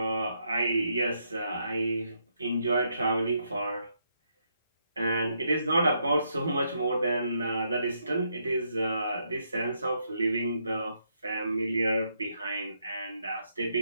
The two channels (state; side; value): inverted; both; correlation -0.77